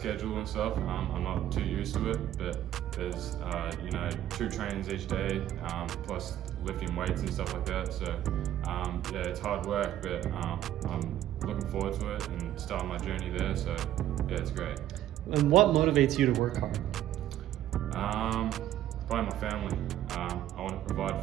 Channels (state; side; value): quieter; left; 12.4 dB